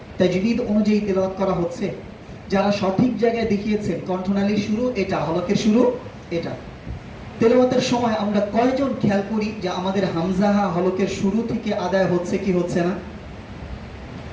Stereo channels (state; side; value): identical; both; correlation 1.00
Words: তাজবিদ অনুযায়ী তেলাওয়াত করা হচ্ছে? যারা সঠিক জায়গায় দেখিয়েছেন কণ্ঠনালীর শুরু এটা, হলকের শুরু এটা, তেলাওয়াতের সময় আমরা কয়জন খেয়াল করি যে আমাদের হামজাহা হলকের শুরু থেকে আদায় হচ্ছে কি হচ্ছে না?